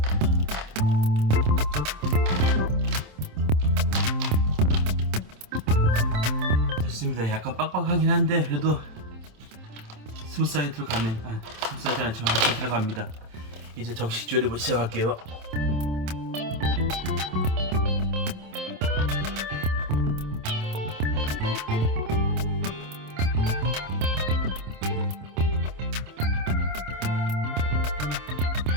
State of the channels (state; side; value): late; left; 27 ms